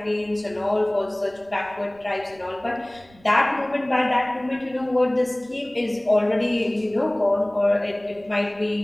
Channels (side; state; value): right; noise; rumble, 27 dB below the sound